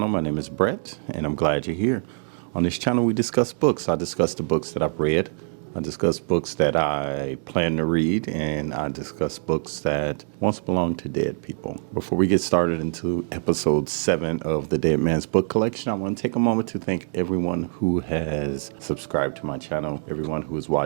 My name is Brett and I'm glad you're here. On this channel we discuss books. I discuss the books that I've read. I discuss books that I plan to read, and I discuss books that once belonged to dead people. Before we get started into episode 7 of the Dead Man's Book Collection, I want to take a moment to thank everyone who has subscribed to my channel, everyone who has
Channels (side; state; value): left; silent; digital silence